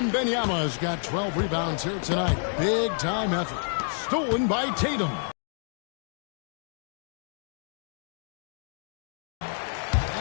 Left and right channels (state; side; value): silent; right; 59 dB below the other